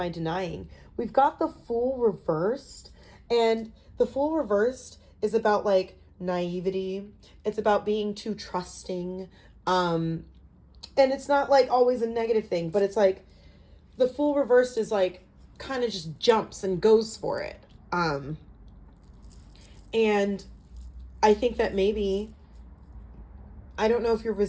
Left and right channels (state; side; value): identical; both; correlation 1.00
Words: I denying? We've got the Fool reversed, and the Fool reversed is about like naivety. It's about being too trusting. And it's not like always a negative thing, but it's like the Fool reversed is like kind of just jumps and goes for it. And I think that maybe, I don't know if you're